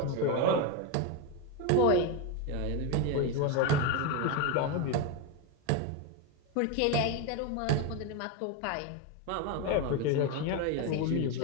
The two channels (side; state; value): both; different; correlation 0.03